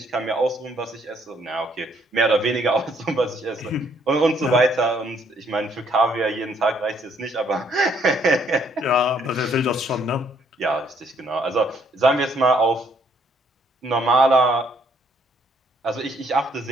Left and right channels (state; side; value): normal; both; correlation 0.67